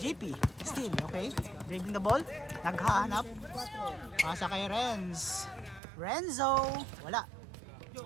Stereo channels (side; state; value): left; drops out; at 5.8 s